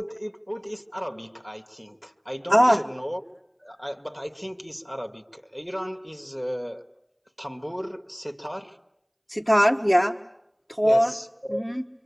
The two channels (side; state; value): both; identical; correlation 1.00